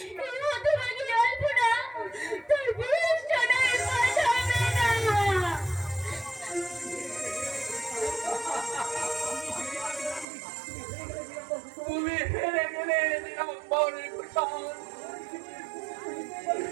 হতভাগী আলপনা তোর বিয়ের জন্যই পাঠাবে না। তুমি হেরে গেলে নিরম্বরের কুশল,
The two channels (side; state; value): left; drops out; at 10.2 s